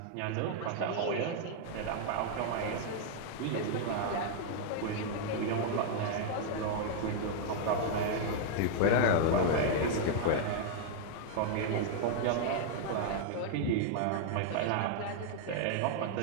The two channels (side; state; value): both; different; correlation -0.01